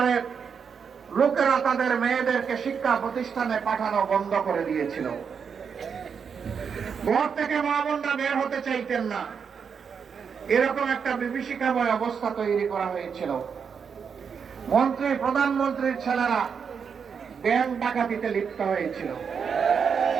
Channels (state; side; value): quieter; left; 6.5 dB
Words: লোকেরা তাদের মেয়েদেরকে শিক্ষা প্রতিষ্ঠানে পাঠানো বন্ধ করে দিয়েছিল। ঘর থেকে মা বোনরা বের হতে চাইতেন না, এরকম একটা বিভীষিকাময় অবস্থা তৈরি করা হয়েছিল। মন্ত্রী, প্রধানমন্ত্রীর ছেলেরা ব্যাংক ডাকাতিতে লিপ্ত হয়েছিল।